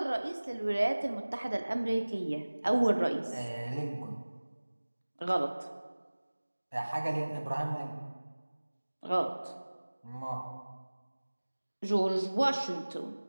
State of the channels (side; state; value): both; inverted; correlation -1.00